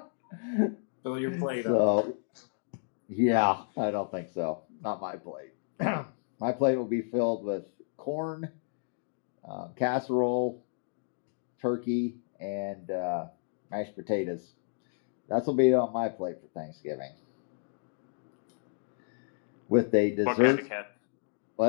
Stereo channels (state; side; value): silent; right; digital silence